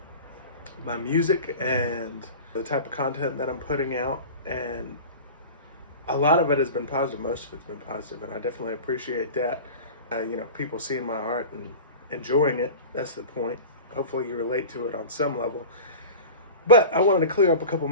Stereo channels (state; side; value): inverted; both; correlation -0.34